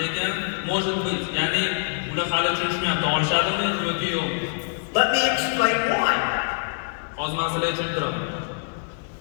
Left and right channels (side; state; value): right; silent; digital silence